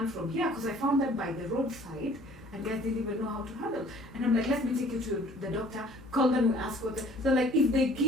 from here, because I found them by the roadside, and guys didn't even know how to handle. And I'm like, let me take you to the doctor, call them, we ask what. So like, if they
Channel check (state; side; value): normal; both; correlation 0.54